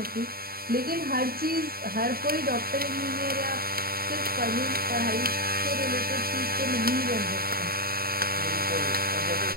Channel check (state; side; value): late; left; 0.43 ms